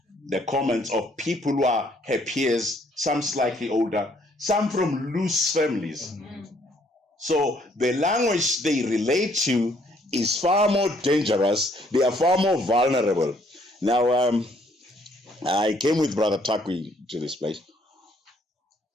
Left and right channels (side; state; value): both; normal; correlation 0.65